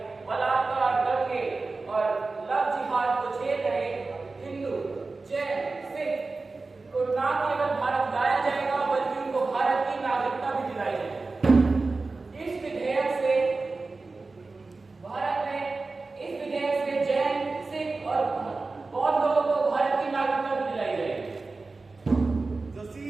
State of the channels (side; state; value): left; quieter; 3.7 dB